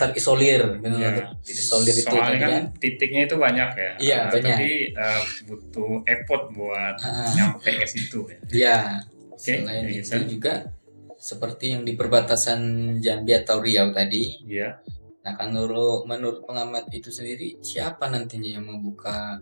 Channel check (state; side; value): inverted; both; correlation -1.00